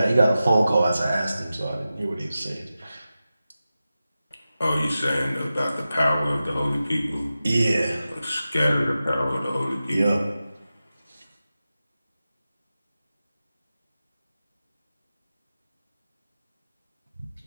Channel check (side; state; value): both; inverted; correlation -0.93